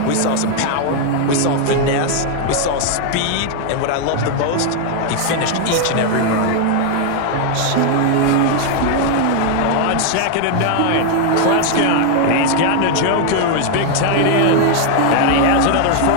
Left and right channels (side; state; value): both; different; correlation 0.00